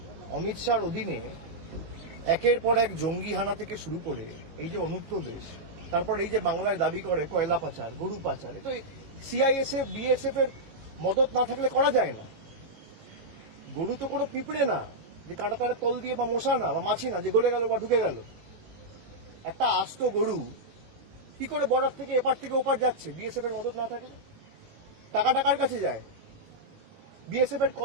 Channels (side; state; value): left; late; 18 ms